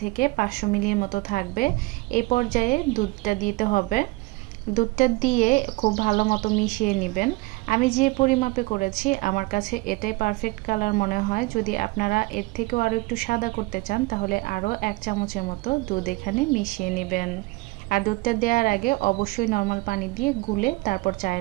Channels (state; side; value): quieter; left; 22.9 dB